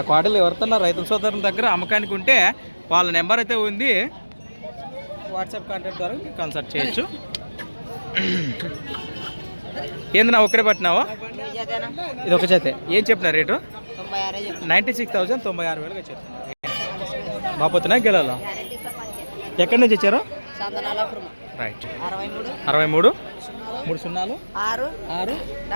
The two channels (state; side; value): inverted; both; correlation -1.00